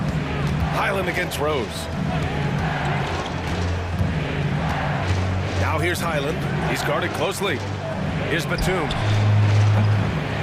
Highland against Rose. Now here's Highland. He's guarded closely. Here's Batum.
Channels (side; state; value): both; identical; correlation 1.00